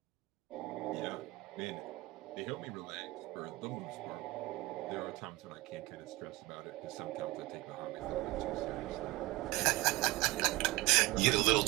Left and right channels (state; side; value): quieter; left; 20.8 dB